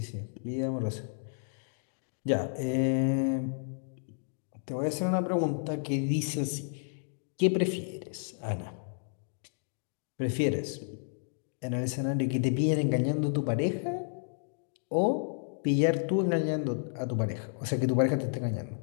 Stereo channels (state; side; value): silent; right; digital silence